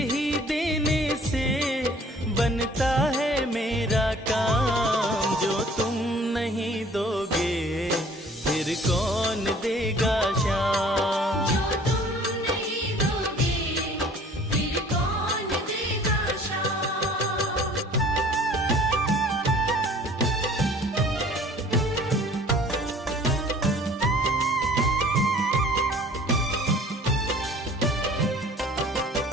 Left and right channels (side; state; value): both; normal; correlation 0.51